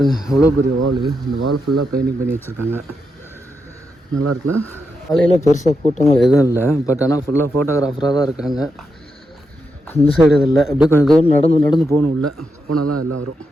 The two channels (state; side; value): normal; both; correlation 0.85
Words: எவ்வளோ பெரிய வால், இந்த வால் ஃபுல்லாக பெயிண்டிங் பண்ணி வச்சுருக்காங்க. நல்லா இருக்குல்ல. காலையில் பெருசாக கூட்டங்கள் எதுவும் இல்லை, பட் ஆனால் ஃபுல்லாக ஃபோட்டோகிராஃபராக தான் இருக்காங்க. இந்த சைடு இது இல்லை, அப்படியே கொஞ்சம் தூரம் நடந்து போகணும். உள்ள போனால் தான் எல்லாம் வரும்.